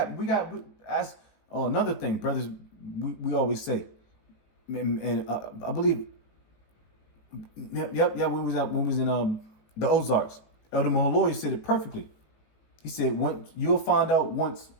Another thing, brothers, we always say, and I believe, yep, when we was in the Ozarks, Elder Mahaloy said it perfectly. He said, you'll find out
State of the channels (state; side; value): late; right; 19 ms